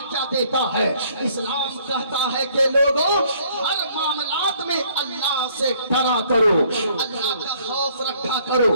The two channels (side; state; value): both; inverted; correlation -0.62